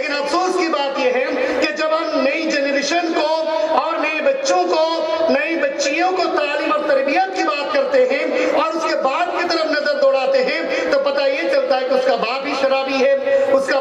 افسوس کی بات یہ ہے کہ جب ہم نئی جنریشن کو اور نئے بچوں کو، نئی بچیوں کو تعلیم اور تربیت کی بات کرتے ہیں اور اس کے باپ کی طرف نظر دوڑاتے ہیں تو پتہ یہ چلتا ہے کہ اس کا باپ بھی شرابی ہے، اس کا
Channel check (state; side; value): identical; both; correlation 1.00